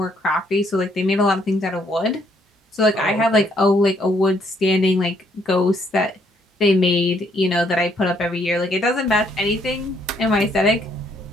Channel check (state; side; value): normal; both; correlation 0.69